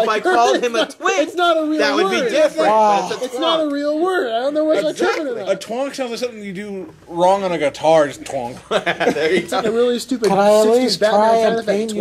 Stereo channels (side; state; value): both; identical; correlation 1.00